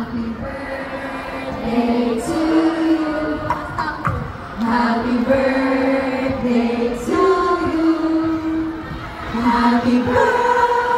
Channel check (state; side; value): identical; both; correlation 1.00